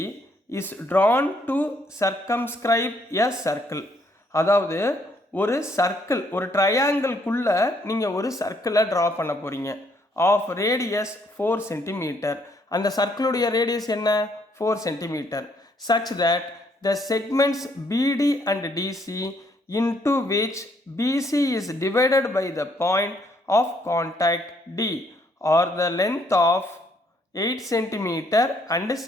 is drawn to circumscribe a circle. அதாவது ஒரு சர்க்கிள், ஒரு ட்ரையாங்கிள்குள்ள நீங்கள் ஒரு சர்க்கிளை ட்ரா பண்ண போகிறீங்க. Of radius 4 centimetre. அந்த சர்க்கிளுடைய ரேடியஸ் என்ன? 4 centimetre. such that the segments BD and DC into which BC is divided by the point of contact D are the length of 8 centimetre and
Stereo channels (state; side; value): normal; both; correlation 0.69